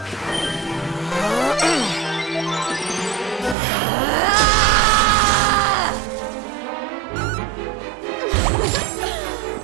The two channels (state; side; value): drops out; left; at 3.6 s